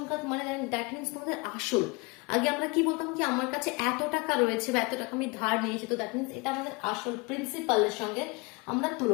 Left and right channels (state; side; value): quieter; right; 27.5 dB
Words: মানে দ্যাট মিনস তোমাদের আসল। আগে আমরা কি বলতাম কি আমার কাছে এত টাকা রয়েছে বা এত টাকা আমি ধার নিয়েছি, তো দ্যাট মিনস এটা আমাদের আসল প্রিন্সিপালের সঙ্গে আমরা